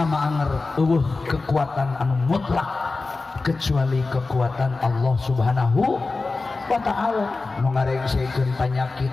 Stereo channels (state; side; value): quieter; right; 3.7 dB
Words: anger eueuh kekuatan anu mutlak kecuali kekuatan Allah Subhanahu wa Ta'ala. Nu ngarengseukeun panyakit